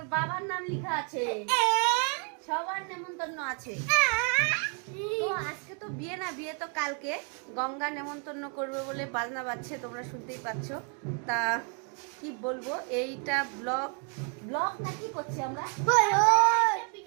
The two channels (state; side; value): quieter; left; 39.3 dB